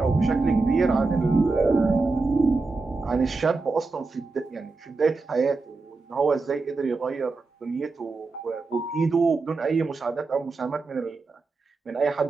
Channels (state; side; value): quieter; left; 3.8 dB